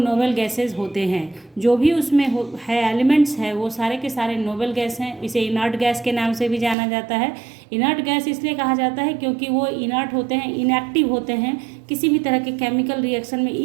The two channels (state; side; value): drops out; left; at 6.8 s